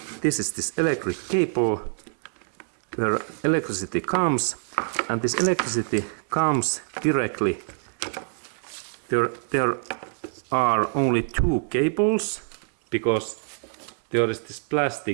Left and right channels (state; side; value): silent; left; digital silence